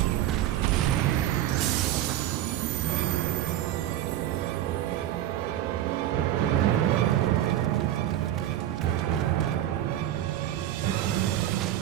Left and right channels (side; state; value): left; quieter; 12.5 dB